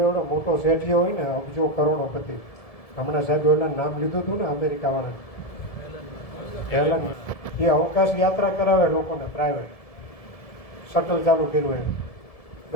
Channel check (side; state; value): right; late; 1.7 ms